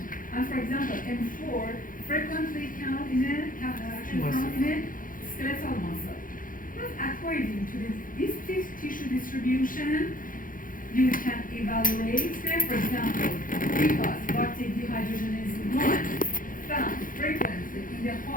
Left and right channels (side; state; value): right; late; 0.40 ms